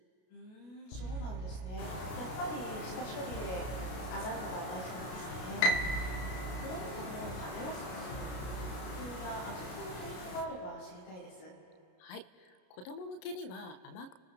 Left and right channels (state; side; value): late; right; 33 ms